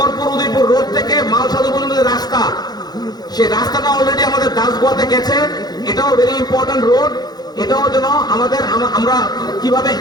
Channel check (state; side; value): late; right; 0.19 ms